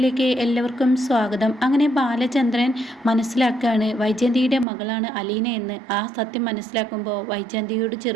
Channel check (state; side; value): drops out; left; at 4.7 s